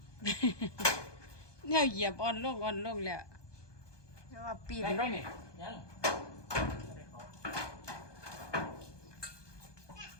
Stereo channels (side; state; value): right; late; 1.2 ms